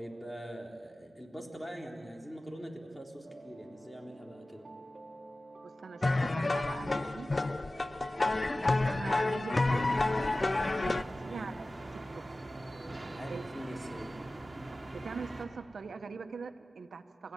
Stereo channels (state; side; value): normal; both; correlation 0.97